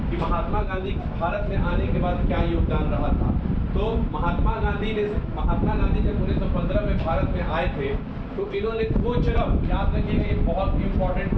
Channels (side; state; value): both; identical; correlation 1.00